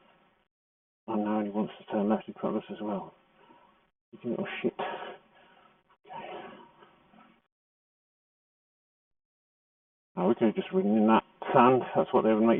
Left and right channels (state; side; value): identical; both; correlation 1.00